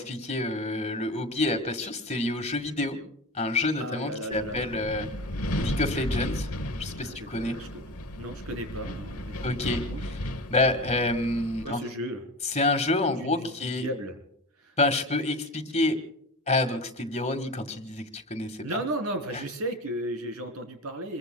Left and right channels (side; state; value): both; normal; correlation 0.28